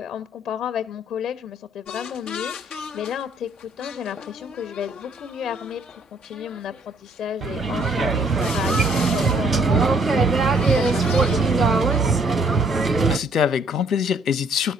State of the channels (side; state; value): both; normal; correlation 0.64